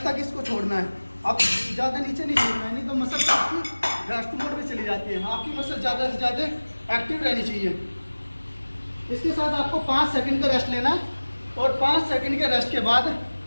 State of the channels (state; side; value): inverted; both; correlation -1.00